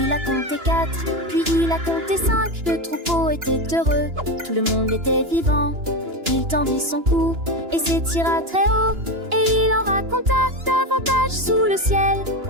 a compté 4, puis il a compté 5. Le troupeau était heureux, tout le monde était vivant. Il tendit son cou et s'étira très haut, et il en raconta davantage sous le ciel.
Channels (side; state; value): left; late; 2.9 ms